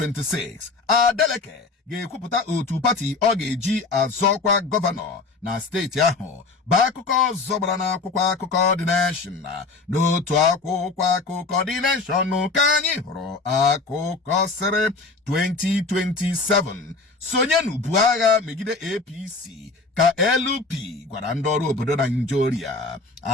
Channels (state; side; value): quieter; right; 3.8 dB